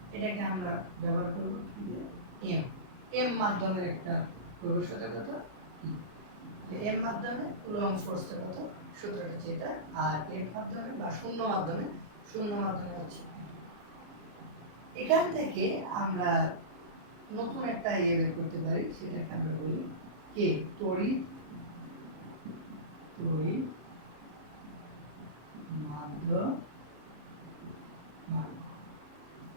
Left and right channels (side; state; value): left; late; 33 ms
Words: এটাকে আমরা ব্যবহার করব কি দিয়ে? m মাধ্যমের একটা প্রবেশতা কত ই, তাহলে m মাধ্যমে কুলম্ব ফোর্সটা কত, সূত্রটা হচ্ছে এটা। আর f মাধ্যমে বা শূন্য মাধ্যমে হচ্ছে এখান থেকে আমরা নতুন একটা বের করতে পারি, সেটাকে আমরা বলি কে তড়িৎ মাধ্যমাঙ্ক।